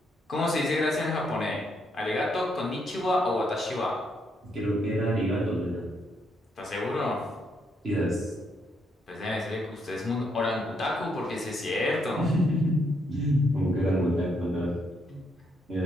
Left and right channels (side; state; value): both; normal; correlation 0.75